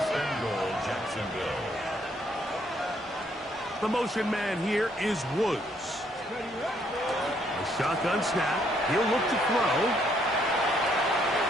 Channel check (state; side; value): normal; both; correlation 0.69